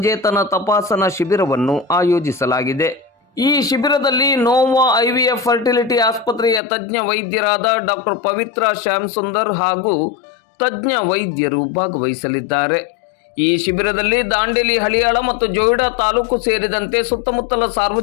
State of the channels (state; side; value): drops out; right; at 6.6 s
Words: ತಪಾಸಣಾ ಶಿಬಿರವನ್ನು ಆಯೋಜಿಸಲಾಗಿದೆ. ಈ ಶಿಬಿರದಲ್ಲಿ ನೋವಾ IVF ಫರ್ಟಿಲಿಟಿ ಆಸ್ಪತ್ರೆಯ ತಜ್ಞ ವೈದ್ಯರಾದ ಡಾಕ್ಟರ್ ಪವಿತ್ರ ಶ್ಯಾಮಸುಂದರ್ ಹಾಗೂ ತಜ್ಞ ವೈದ್ಯರು ಭಾಗವಹಿಸಲಿದ್ದಾರೆ. ಈ ಶಿಬಿರದಲ್ಲಿ ದಾಂಡೇಲಿ, ಹಳಿಯಾಳ ಮತ್ತು ಜೋಯಿಡಾ ತಾಲೂಕು ಸೇರಿದಂತೆ ಸುತ್ತಮುತ್ತಲ